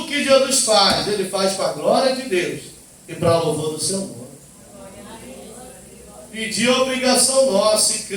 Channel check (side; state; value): both; identical; correlation 1.00